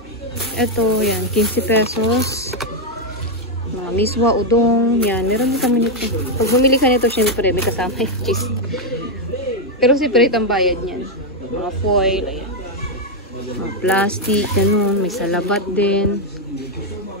Ito, yan. 15 pesos. Mga miswa, udong. Yan. Meron din kami nito. Pag bumili ka nito, syempre, may kasama yung cheese. Pero separate ang bayad niyan. Mga foil, ayan. Mga plastic, ganun. May salabat din.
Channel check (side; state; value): both; normal; correlation 0.01